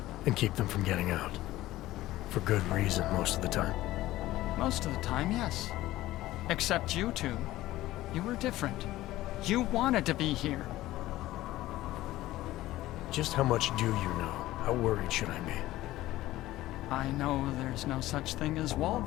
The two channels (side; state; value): right; quieter; 16.1 dB